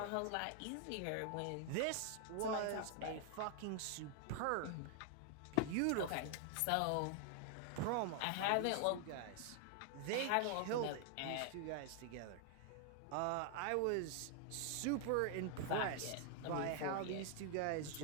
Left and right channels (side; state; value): both; different; correlation 0.00